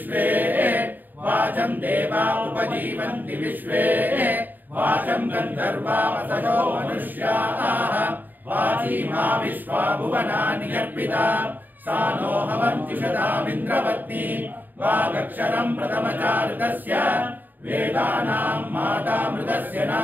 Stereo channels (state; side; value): late; left; 0.088 ms